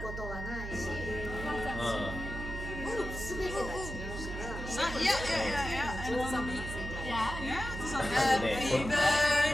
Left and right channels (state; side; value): noise; right; hum, 7 dB below the sound